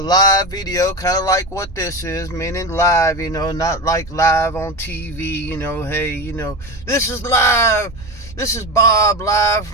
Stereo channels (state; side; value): noise; right; rumble, 17 dB below the sound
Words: video, kind of like what this is, meaning live, not like live on TV, hey, this is live. This is Bob live